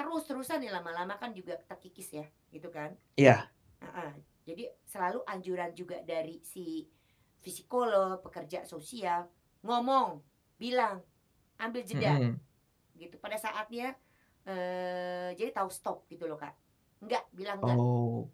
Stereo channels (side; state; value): both; identical; correlation 1.00